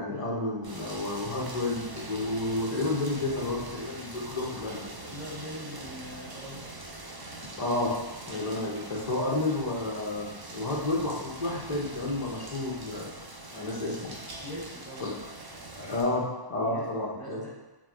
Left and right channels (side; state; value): left; late; 1.0 ms